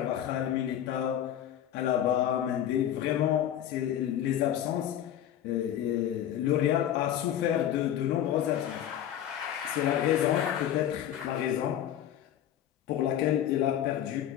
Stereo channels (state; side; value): quieter; right; 10.8 dB